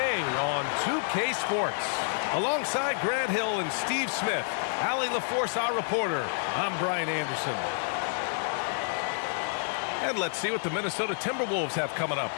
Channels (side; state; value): right; silent; digital silence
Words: on 2K Sports. Alongside Grant Hill and Steve Smith, Allie LaForce, our reporter, I'm Brian Anderson. And let's see what the Minnesota Timberwolves have coming up.